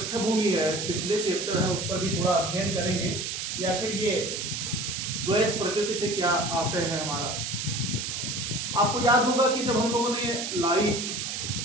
है, पिछले चैप्टर है, उस पर भी थोड़ा अध्ययन करेंगे कि आखिर ये द्वैत प्रकृति से क्या आशय है हमारा। आपको याद होगा कि जब हम लोगों ने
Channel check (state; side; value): noise; right; hiss, 4 dB below the sound